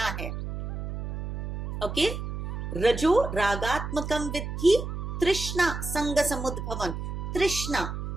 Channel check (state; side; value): noise; right; hum, 5 dB below the sound